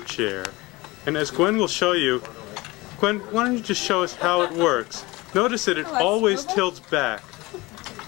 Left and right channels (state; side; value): quieter; right; 22.1 dB